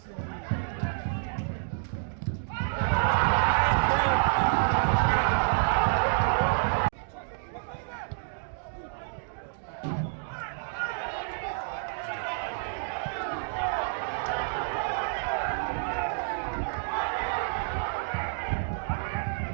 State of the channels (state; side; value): silent; left; digital silence